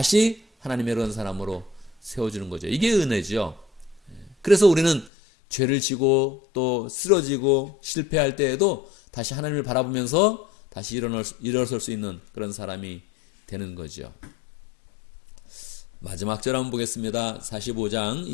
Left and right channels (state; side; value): drops out; right; at 5.1 s